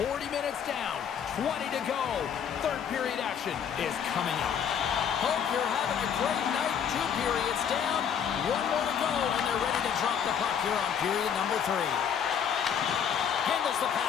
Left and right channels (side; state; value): right; quieter; 7.9 dB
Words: minutes down, 20 to go. Third period action is coming up. Hope you're having a great night. 2 periods down, 1 more to go, and they're ready to drop the puck here on period number 3. Handles the